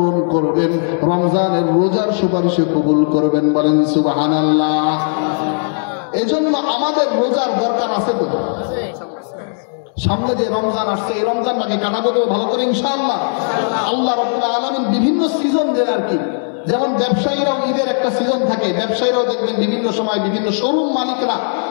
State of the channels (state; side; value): silent; right; 67 dB below the other